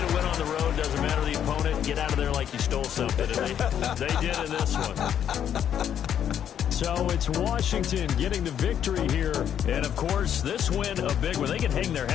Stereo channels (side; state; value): right; quieter; 9.4 dB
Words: a win on the road, doesn't matter the opponent, get out of there like you stole something. And they did in this one. So it's Washington getting the victory here. And, of course, this win a big one. They can hang their